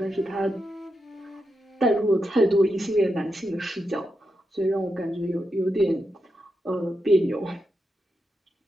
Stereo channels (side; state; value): both; normal; correlation 0.86